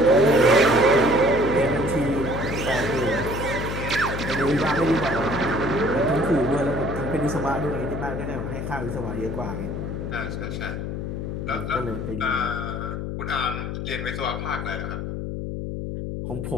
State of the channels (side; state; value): left; noise; hum, 4 dB below the sound